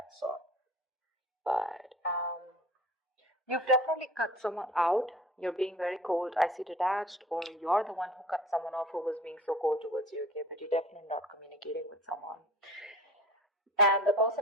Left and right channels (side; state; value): both; normal; correlation 0.43